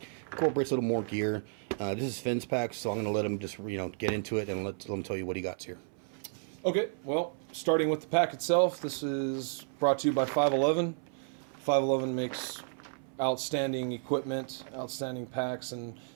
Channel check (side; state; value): left; silent; 56 dB below the other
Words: Incorporates a little more gear. This is Finn's pack, so I'm gonna let him just get into it and let him tell you what he got here. Okay, well, starting with the pack itself, this is brought to you by 511. 511 makes outstanding equipment, outstanding packs, and